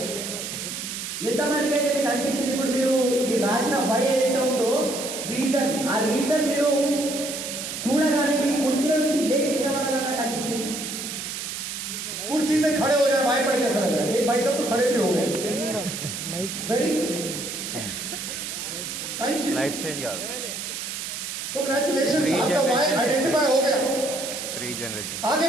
ఎంతమందికి అయితే మీకు అనిపించింది ఇప్పుడు మీరు రాసిన వై ఏదైతే ఉందో రీజన్, ఆ రీజన్ మీరు చూడగానే మీ కుర్చీల నుంచి లేచి నిలబడాలన్నట్టు అనిపించింది? कुर्सी से खड़े हो जाए वाय पढ़ के ऐसा लग रहा है. एक भाई साहब तो खड़े भी हो गए. Very thank you. Life change काదు कांग्रेचुलेशन, Three आपका वाय generation. आइडेंटिफाई हो गया. 3 जनरेशन आगे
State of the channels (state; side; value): noise; right; hiss, 6 dB below the sound